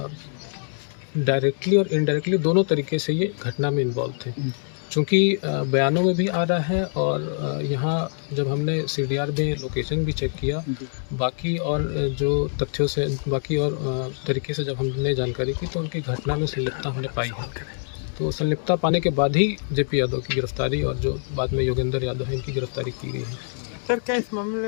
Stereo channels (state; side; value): silent; right; digital silence